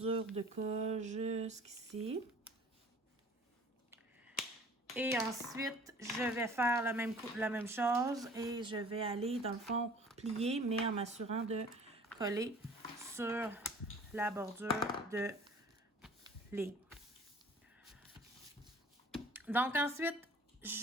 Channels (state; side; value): normal; both; correlation 0.49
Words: de colle jusqu'ici. Et ensuite, je vais faire la même chose et je vais aller, dans le fond, plier, mais en m'assurant de coller sur la bordure de ligne. Donc, ensuite,